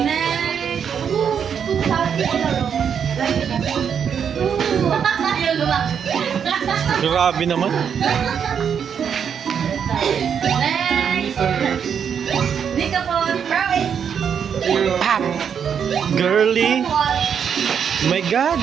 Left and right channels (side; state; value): left; quieter; 7.6 dB